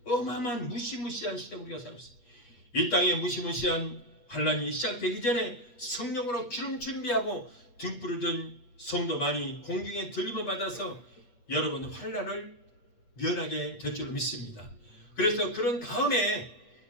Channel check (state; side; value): late; right; 8.4 ms